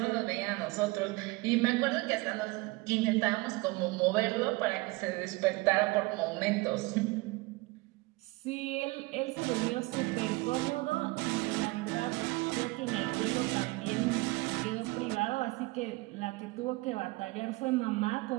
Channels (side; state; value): left; quieter; 23.0 dB